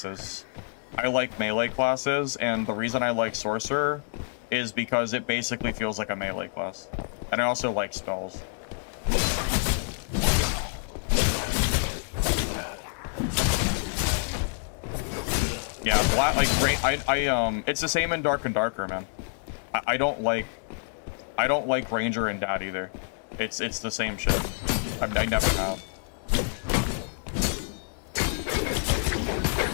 I like melee classes, and the reason I like Sorcerer is because it basically feels like a melee class. And I also like spells. Yeah, it's the same in Dark and Darker, man. I don't like Ranger and Dad either. It's the same shit. I never have.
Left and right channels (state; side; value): silent; right; digital silence